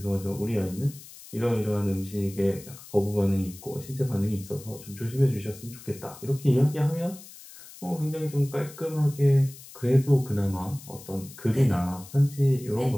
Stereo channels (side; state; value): left; noise; hiss, 18 dB below the sound